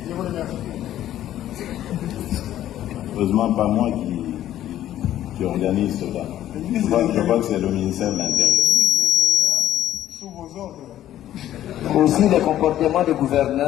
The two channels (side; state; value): right; quieter; 12.4 dB